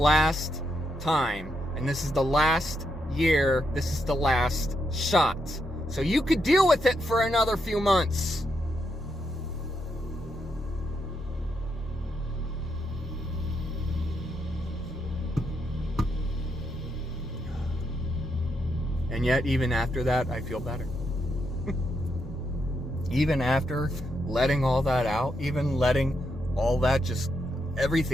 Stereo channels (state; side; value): normal; both; correlation 0.81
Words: time, and this is the last year, this is the last shot. So you could deal with it for another few months. And yet, even after that, I feel better. Even after letting all that out, even letting all that